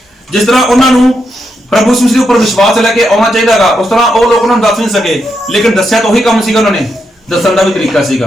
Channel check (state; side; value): normal; both; correlation 0.82